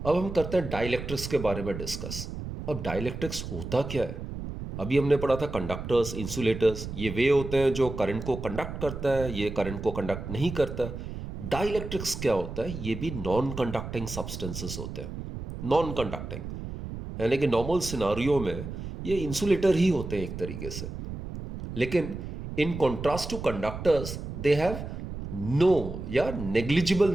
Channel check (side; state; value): right; noise; rumble, 8 dB below the sound